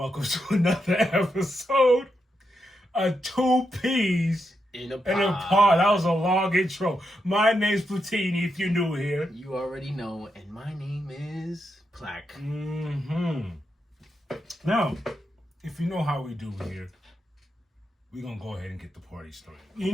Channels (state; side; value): normal; both; correlation 0.84